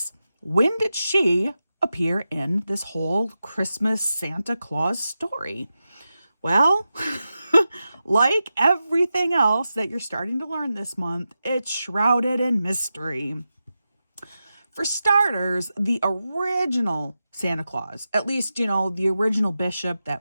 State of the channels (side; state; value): both; inverted; correlation -0.91